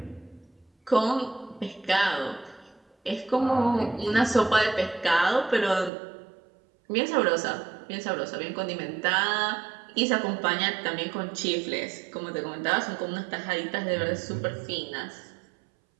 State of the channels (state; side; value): drops out; left; at 5.9 s